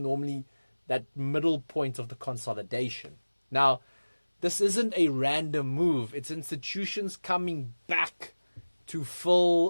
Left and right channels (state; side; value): inverted; both; correlation -1.00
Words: that middle point of the consolidation. Now, this isn't a random move. It's institutions coming back to